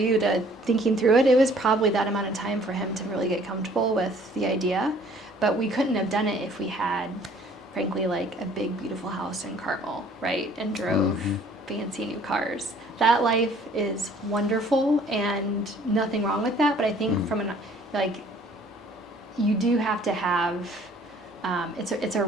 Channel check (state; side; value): normal; both; correlation 0.56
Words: to thinking through it. It was probably that amount of time for him to really get comfortable with the idea, but we couldn't have done it if we had, frankly, like a big, beautiful house in Carmel, right? And drove fancy new cars. That life is wonderful and nothing wrong with that. But I think you do have to have, it's a